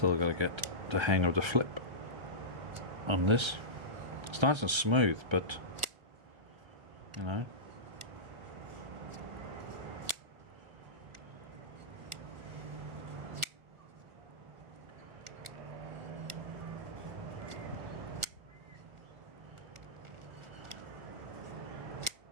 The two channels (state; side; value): late; left; 1.4 ms